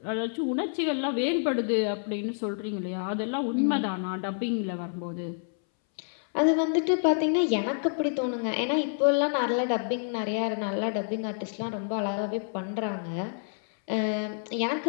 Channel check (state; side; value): silent; right; 59 dB below the other